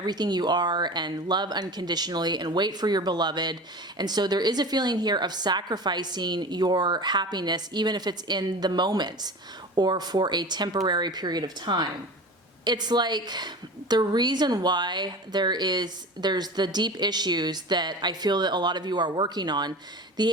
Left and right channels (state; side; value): normal; both; correlation 0.34